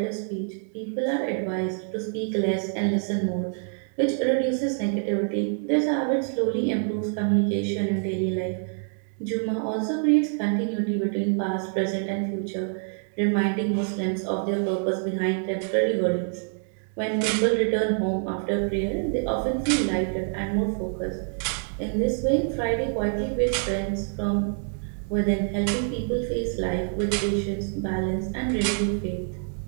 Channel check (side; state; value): left; silent; 61 dB below the other